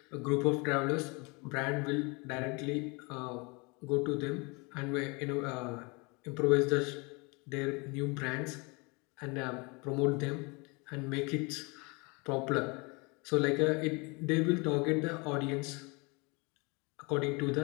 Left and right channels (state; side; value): quieter; right; 28.9 dB